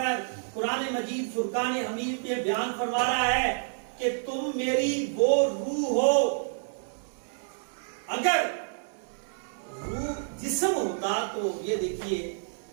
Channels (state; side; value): silent; left; digital silence